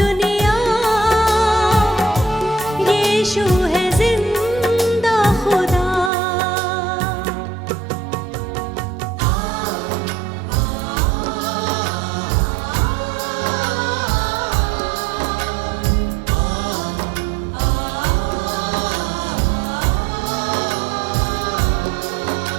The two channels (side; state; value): left; drops out; at 6.1 s